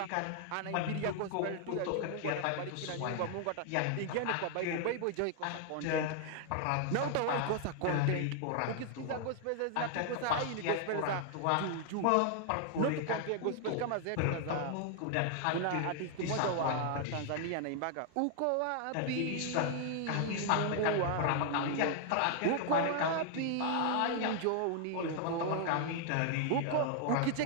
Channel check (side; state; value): both; different; correlation 0.00